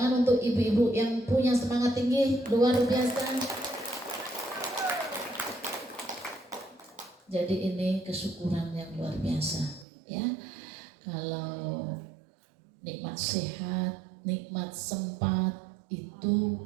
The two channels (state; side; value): drops out; left; at 9.9 s